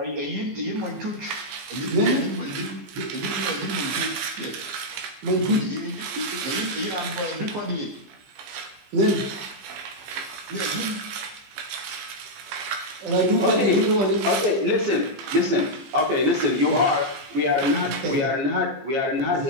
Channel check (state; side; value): late; left; 15 ms